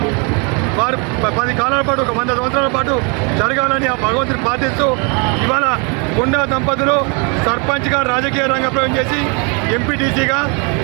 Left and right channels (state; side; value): quieter; left; 33.6 dB